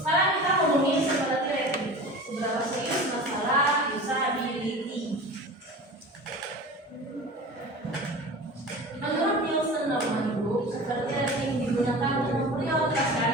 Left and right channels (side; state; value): both; normal; correlation 0.36